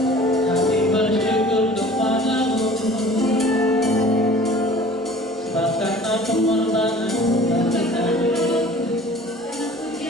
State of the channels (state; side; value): normal; both; correlation 0.46